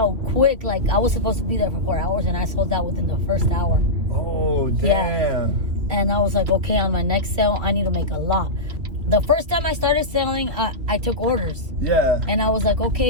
quick. Like, I was supposed to be there for 4 hours, and I sold out within the first hour. Oh, damn. Yeah. And I was like, okay, on my next sale, I need to make a lot. The first time I started selling, I took orders. Yeah. And I was like,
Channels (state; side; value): late; left; 3.1 ms